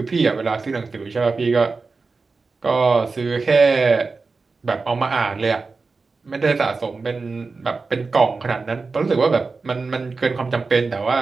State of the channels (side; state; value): left; quieter; 4.2 dB